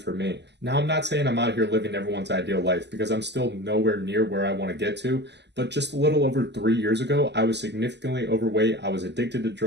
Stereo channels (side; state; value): left; late; 0.50 ms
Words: me. Now, I'm not saying I'm out here living everyone's ideal life, because I'm still nowhere near where I want to get to, but just a little over 3 years ago, I was significantly overweight. I was addicted to